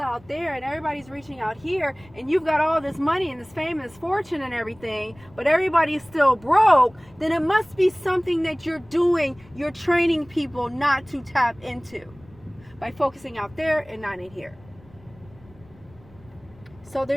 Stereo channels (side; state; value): left; noise; rumble, 25 dB below the sound